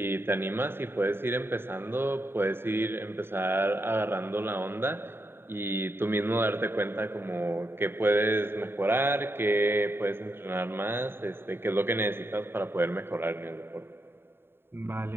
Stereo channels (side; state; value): left; late; 0.11 ms